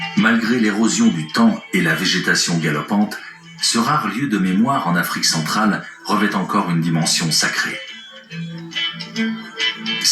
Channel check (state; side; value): identical; both; correlation 1.00